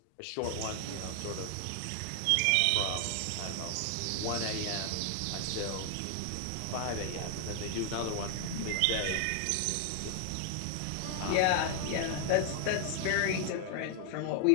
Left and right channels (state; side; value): different; both; correlation 0.00